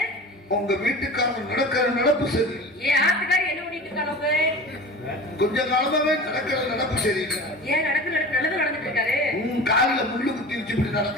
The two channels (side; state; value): both; normal; correlation 0.35